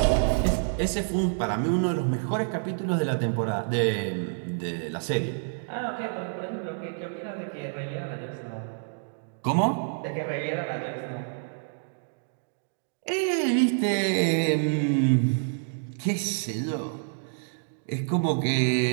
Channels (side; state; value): left; silent; digital silence